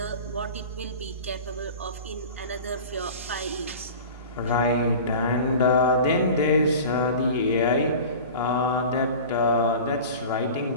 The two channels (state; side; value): inverted; both; correlation -0.37